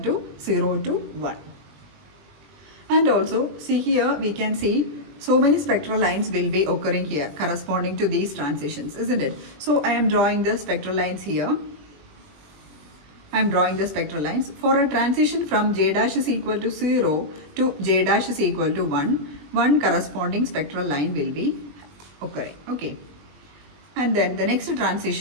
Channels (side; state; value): left; late; 21 ms